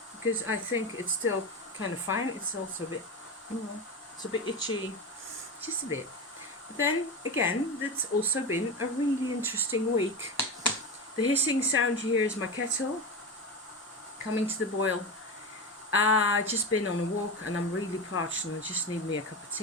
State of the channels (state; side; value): normal; both; correlation 0.21